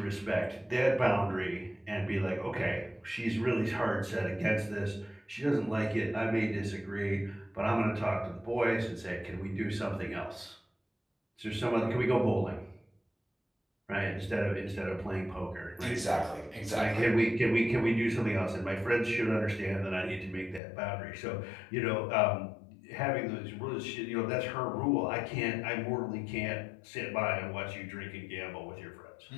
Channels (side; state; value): right; drops out; at 20.6 s